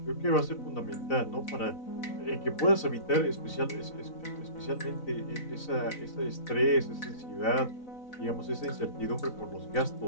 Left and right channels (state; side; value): late; right; 4.0 ms